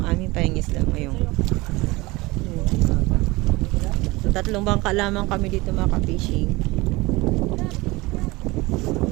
aming pahingisda ngayon. So 3 bangka lamang kami dito mga ka-fishing.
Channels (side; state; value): left; quieter; 22.0 dB